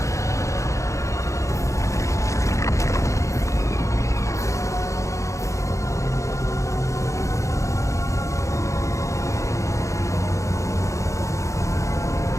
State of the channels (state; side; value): late; right; 0.15 ms